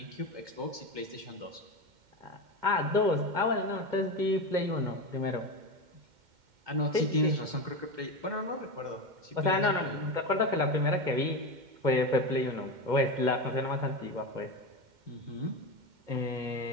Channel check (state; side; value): late; left; 2.1 ms